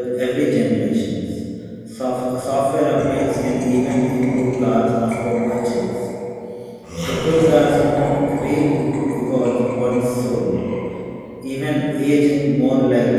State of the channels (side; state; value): both; identical; correlation 1.00